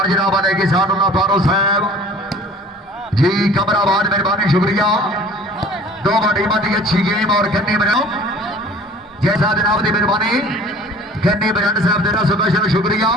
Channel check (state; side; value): normal; both; correlation 0.47